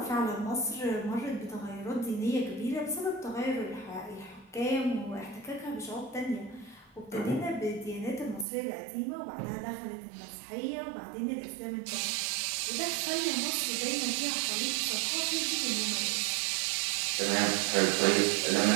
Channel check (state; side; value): drops out; left; at 8.5 s